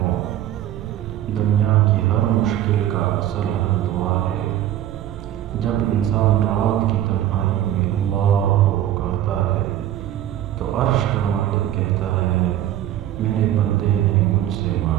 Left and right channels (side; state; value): left; quieter; 12.2 dB